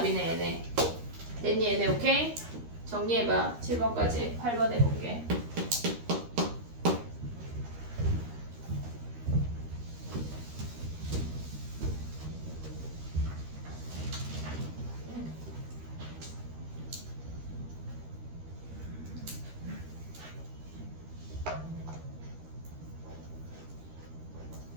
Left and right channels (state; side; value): late; left; 13 ms